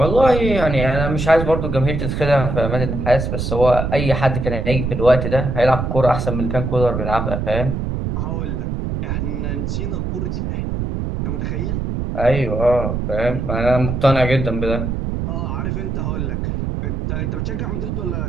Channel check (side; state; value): right; noise; rumble, 2 dB below the sound